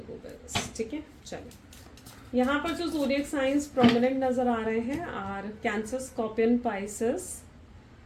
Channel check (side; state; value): both; identical; correlation 1.00